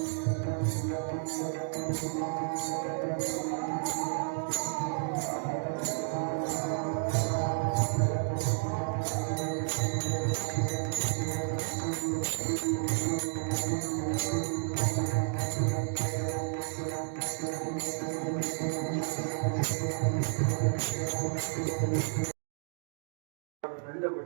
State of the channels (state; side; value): silent; left; digital silence